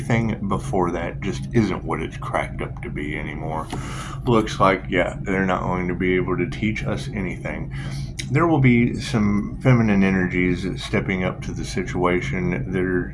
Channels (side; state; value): both; identical; correlation 1.00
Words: before that just isn't what it's cracked up to be anymore. Looks like, yeah, they're not going to be able to teach us anything. There will be some feminine energies stepping up to the situation. They're